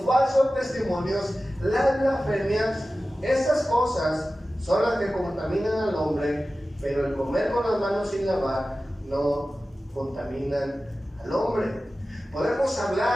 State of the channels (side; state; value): both; normal; correlation 0.95